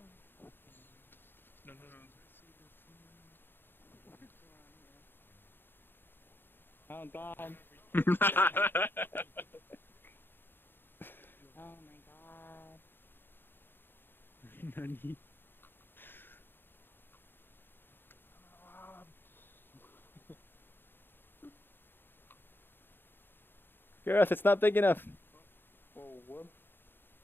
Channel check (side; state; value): right; late; 0.098 ms